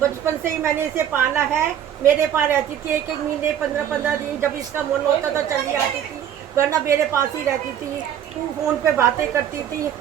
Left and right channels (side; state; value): left; quieter; 9.8 dB